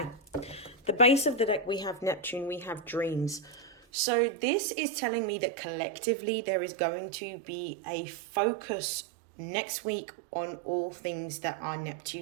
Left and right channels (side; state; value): left; drops out; at 3.8 s